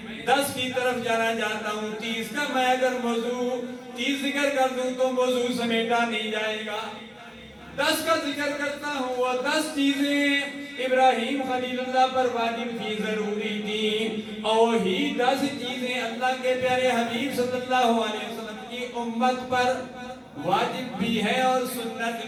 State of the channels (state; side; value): identical; both; correlation 1.00